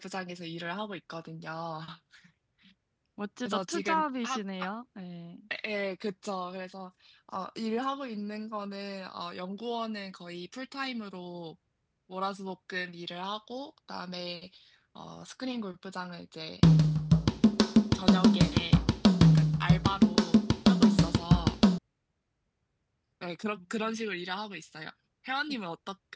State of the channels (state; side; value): identical; both; correlation 1.00